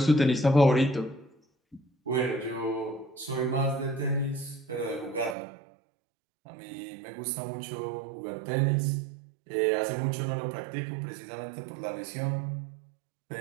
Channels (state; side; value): drops out; left; at 5.4 s